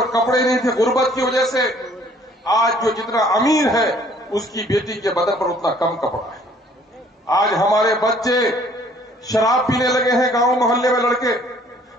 कपड़े नहीं थे गुर्बत की वजह से। आज जो जितना अमीर है, उसकी बेटी के बदन पर उतना कम कपड़ा है। आज हमारे बच्चे शराब पीने लगे हैं, गांव मोहल्ले में लड़के,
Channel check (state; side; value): normal; both; correlation 0.58